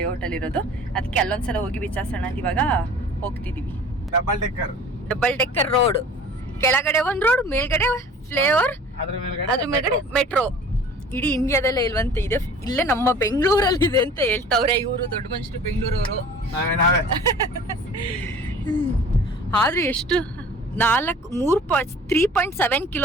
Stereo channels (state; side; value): normal; both; correlation 0.45